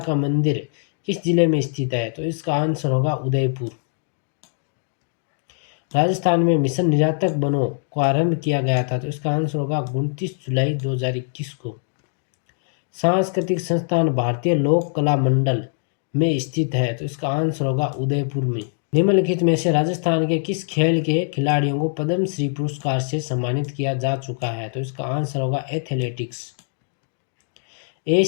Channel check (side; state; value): right; silent; digital silence